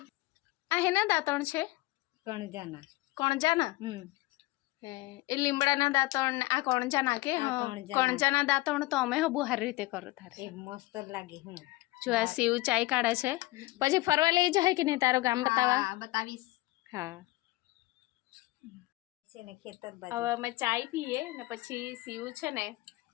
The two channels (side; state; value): right; quieter; 20.0 dB